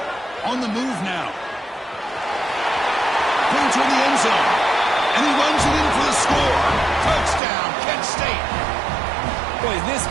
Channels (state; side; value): drops out; left; at 7.4 s